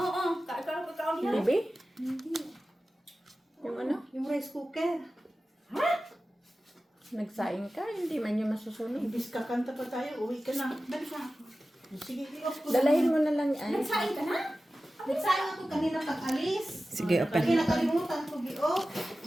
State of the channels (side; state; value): both; normal; correlation 0.95